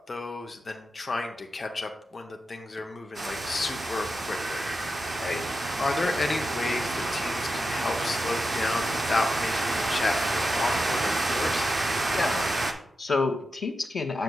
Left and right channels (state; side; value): normal; both; correlation 0.90